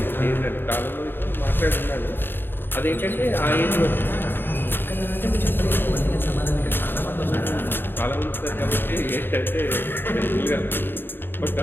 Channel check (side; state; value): right; late; 0.098 ms